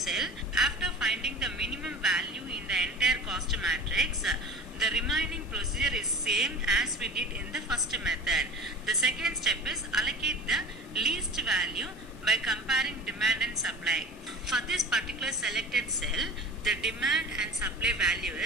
After finding the minimum value in the entire cost matrix, the remaining procedure is same as we did in the first method. The second step is allocate the least value by comparing demand and supply. For this particular selected cell, the demand and supply value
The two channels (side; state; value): both; normal; correlation 0.36